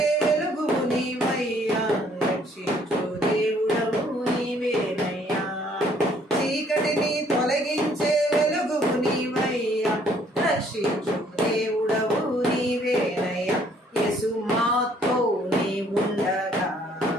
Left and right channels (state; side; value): normal; both; correlation 0.63